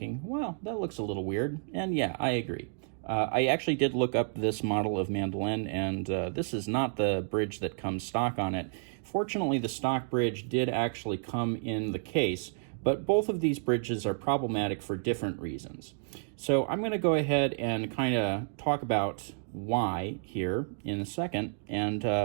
well, that looks a little weird, and yeah, I agree. I actually did look up this model of mandolin, and this is not the bridge that comes stock on it. Fortunately, the stock bridge did actually come in the case, but both of these bridges are problematic for different reasons. So I'm going to go ahead and kind of talk about why here in a second, and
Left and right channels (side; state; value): left; silent; digital silence